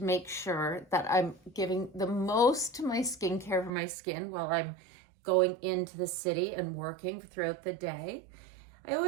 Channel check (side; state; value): left; drops out; at 3.7 s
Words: make sure that I'm giving the most to my skincare for my skin while I'm going into the city and working throughout the day. I